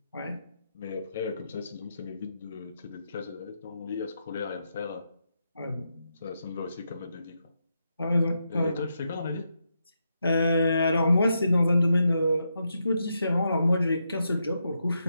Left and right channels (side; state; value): both; inverted; correlation -0.83